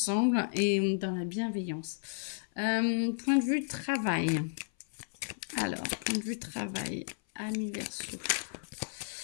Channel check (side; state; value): right; silent; 56 dB below the other